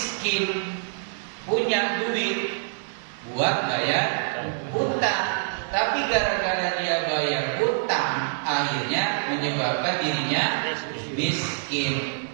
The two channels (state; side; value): silent; left; 61 dB below the other